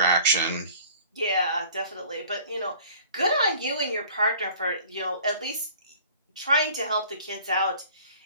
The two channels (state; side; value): inverted; both; correlation -0.49